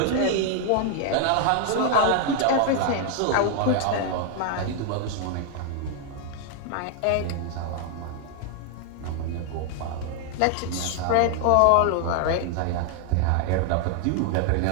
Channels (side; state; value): both; different; correlation 0.00